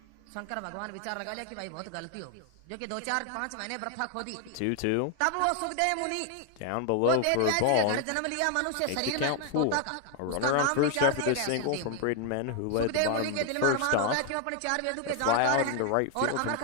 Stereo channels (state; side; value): different; both; correlation 0.00